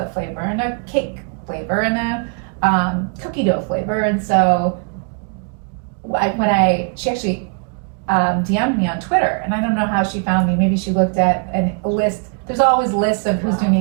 flavor and a cake flavor and a cookie dough flavor. And so she actually DM'd me on Twitter, and I don't know how she found me. Maybe she looked at a list. There's always lists of who's doing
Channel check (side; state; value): left; quieter; 39.0 dB